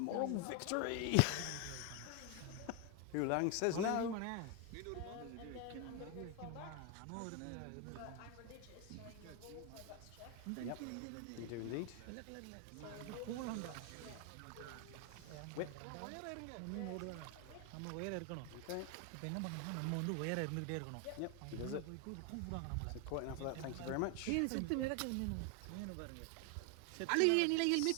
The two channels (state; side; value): different; both; correlation 0.01